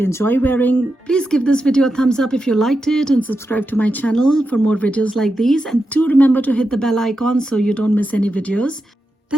enjoy wearing, please give this video a thumbs up if you liked it and subscribe to my channel for more videos like these. And do remember to hit the bell icon so you don't miss any videos.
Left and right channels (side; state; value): both; normal; correlation 0.88